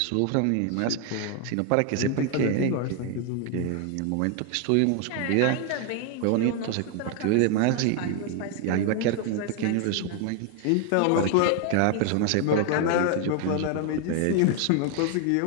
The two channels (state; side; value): different; both; correlation 0.00